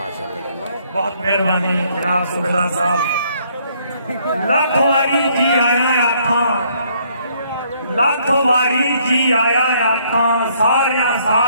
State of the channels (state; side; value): inverted; both; correlation -0.67